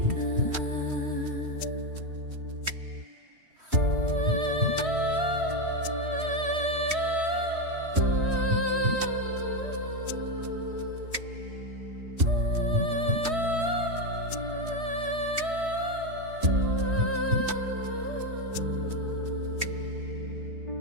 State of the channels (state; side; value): late; left; 3.1 ms